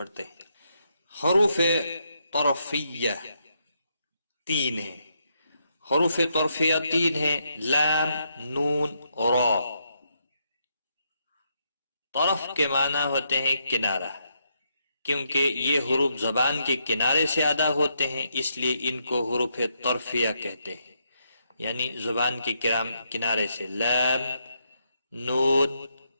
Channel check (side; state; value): both; inverted; correlation -0.78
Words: ہیں۔ حروف طرفیہ 3 ہیں۔ حروف طرفیہ 3 ہیں، لام، نون، را۔ طرف کے معنی ہوتے ہیں کنارہ۔ کیونکہ یہ حروف زبان کے کنارے سے ادا ہوتے ہیں اس لیے ان کو حروف طرفیہ کہتے ہیں، یعنی زبان کے کنارے سے، لام، نون،